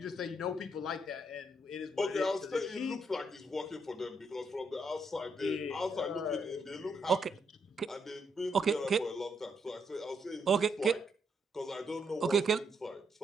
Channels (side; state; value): both; normal; correlation 0.76